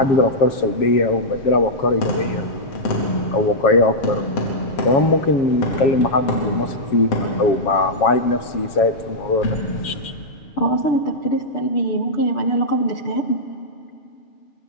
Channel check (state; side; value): late; right; 7.3 ms